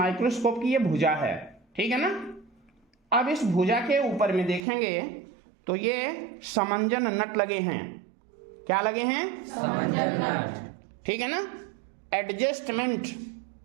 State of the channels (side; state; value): left; drops out; at 4.6 s